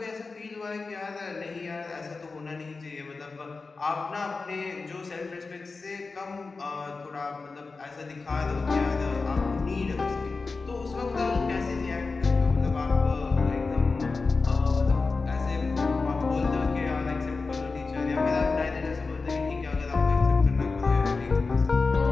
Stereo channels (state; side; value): quieter; right; 4.1 dB